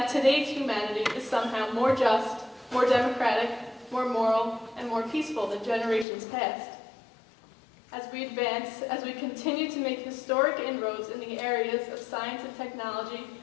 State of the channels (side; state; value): right; drops out; at 6.1 s